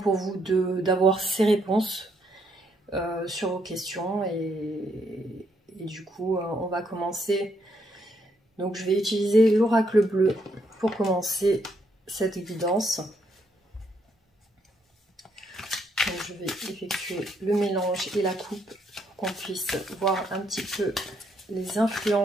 vous d'avoir ces réponses sur vos questions et du coup on va commencer. Donc je vais utiliser l'oracle bleu pour commencer cette guidance. Donc, je vais effectuer le mélange et la coupe pour qu'on puisse voir un petit peu les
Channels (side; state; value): both; normal; correlation 0.74